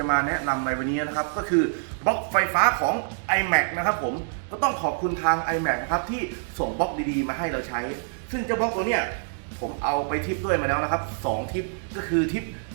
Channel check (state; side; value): silent; left; digital silence